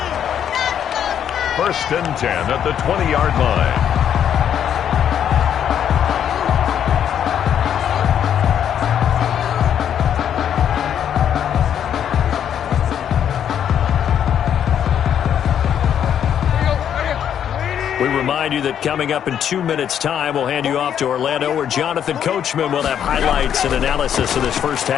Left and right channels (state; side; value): quieter; right; 9.2 dB